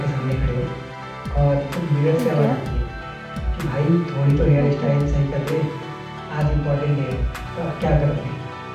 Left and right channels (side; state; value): both; identical; correlation 1.00